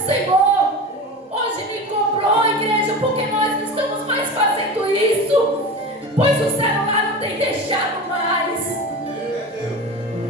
Senhor hoje me cobrou, igreja, porque nós não estamos mais fazendo isso, pois o celular não tem deixado mais.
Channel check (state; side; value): normal; both; correlation 0.29